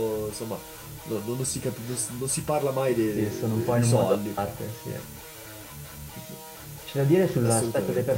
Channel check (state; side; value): identical; both; correlation 1.00